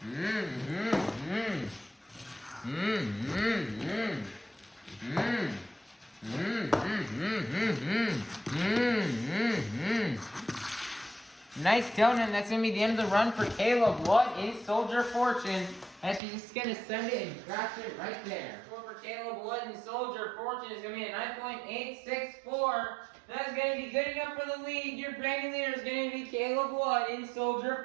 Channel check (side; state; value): left; drops out; at 16.2 s